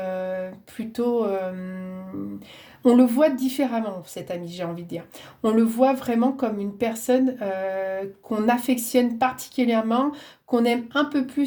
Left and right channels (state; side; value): identical; both; correlation 1.00